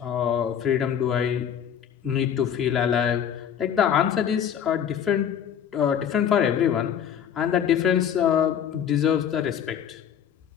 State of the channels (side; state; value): right; quieter; 8.9 dB